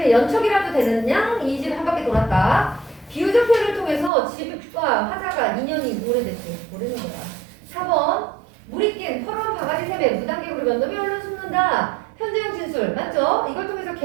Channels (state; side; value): drops out; left; at 4.1 s